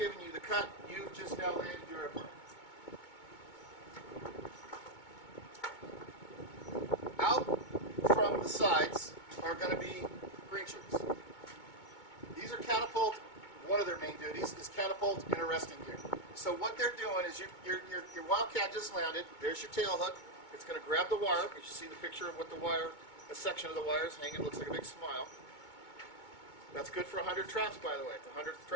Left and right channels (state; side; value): late; right; 2.2 ms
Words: you the cut. You've just now landed your airplane. Out from the sides are going to be green shirts. These are catapult. One of their main duties is catapult and arresting gear. So what they're doing is your Wildcat just landed. There's your tail hook. It's going to grab the wire. You see the picture of what the wire, a section of the wire is hanging. It looks like a big smile. That's good for 100 traps, by the way. The 100th